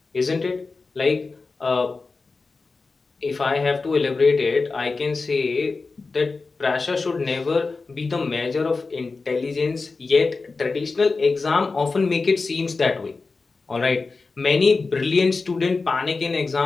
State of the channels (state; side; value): quieter; right; 4.0 dB